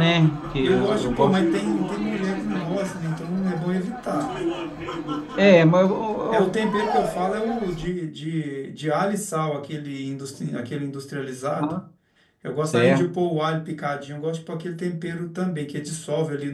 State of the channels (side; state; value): both; identical; correlation 1.00